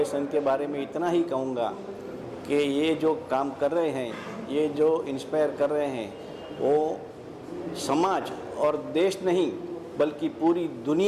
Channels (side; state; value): both; identical; correlation 1.00